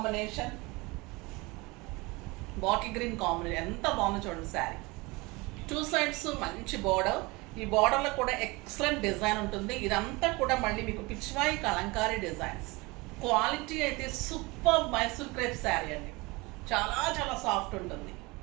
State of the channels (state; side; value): quieter; left; 24.4 dB